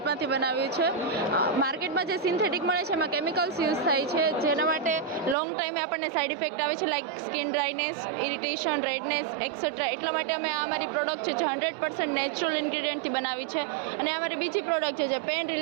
બનાવ્યું છે. માર્કેટમાં જે સિન્થેટિક મળે છે એમાં કેમિકલ્સ યુઝ થાય છે, જેના માટે લોંગ ટાઈમે આપણને સાઇડ ઇફેક્ટ આવે છે, like skin dryness, irritation, redness et cetera. એટલા માટે અમે આ અમારી પ્રોડક્ટ છે જે 100% નેચરલ ઇન્ગ્રેડિયન્ટથી બનાવી છે. અને અમારી બીજી પ્રોડક્ટ છે જે પેન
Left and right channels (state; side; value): drops out; left; at 5.4 s